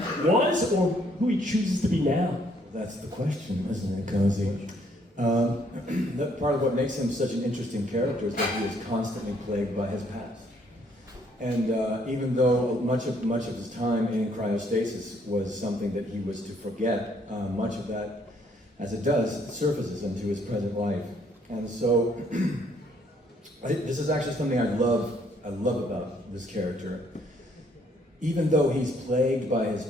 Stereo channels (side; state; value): both; normal; correlation 0.66